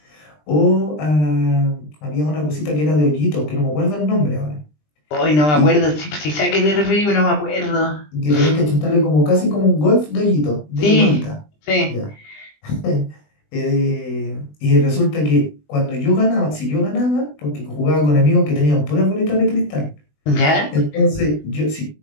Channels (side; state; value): right; late; 20 ms